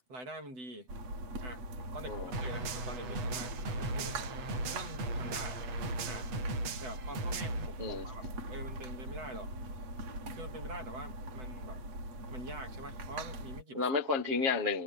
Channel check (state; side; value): late; left; 8.1 ms